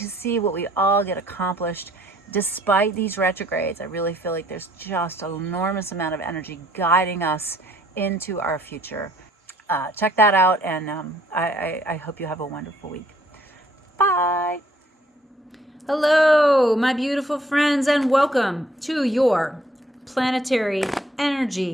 see what we all get accomplished despite these retrogrades. I really feel like there's just an enormous amount of energy guiding us into our future. Check that out, and I hope you have a wonderful week. Bye. Hello, my beautiful friends, and welcome to your planetary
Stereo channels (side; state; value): both; normal; correlation 0.64